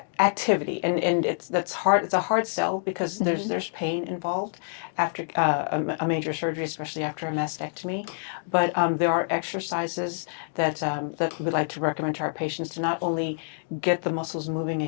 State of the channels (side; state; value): right; silent; digital silence